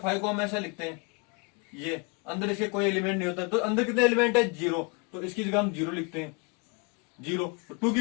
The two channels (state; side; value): quieter; right; 30.1 dB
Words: फाइव को हम ऐसा लिखते हैं, ये अंदर इसके कोई एलिमेंट नहीं होता, तो अंदर कितने एलिमेंट है, जीरो, तो इसकी जगह हम जीरो लिखते हैं, जीरो। टू की